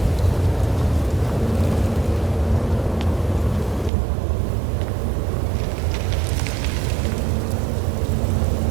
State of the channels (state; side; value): drops out; left; at 3.9 s